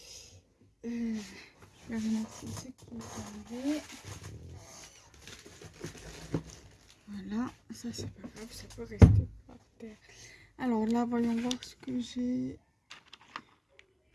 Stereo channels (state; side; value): identical; both; correlation 1.00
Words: Je vais remettre ce qui est tombé. Voilà, ça c'est pas grave, ça peut rester par terre. Alors là, voyons voir ce que j'ai.